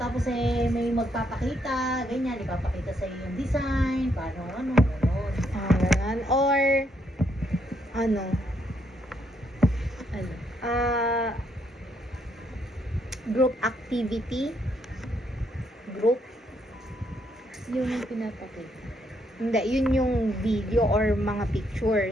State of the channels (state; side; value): normal; both; correlation 0.74